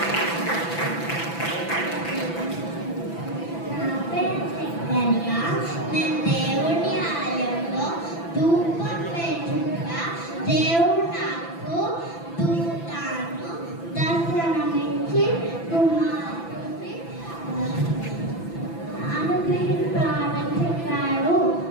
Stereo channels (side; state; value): right; late; 6.0 ms